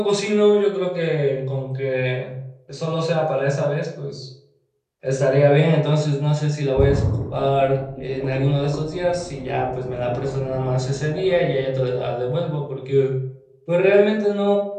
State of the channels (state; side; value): identical; both; correlation 1.00